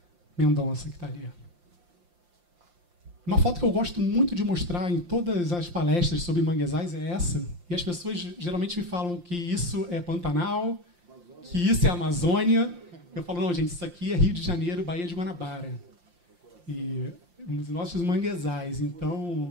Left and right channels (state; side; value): late; left; 5.7 ms